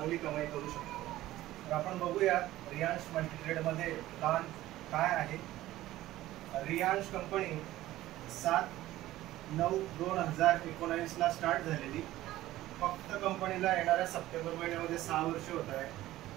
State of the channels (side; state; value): left; quieter; 15.5 dB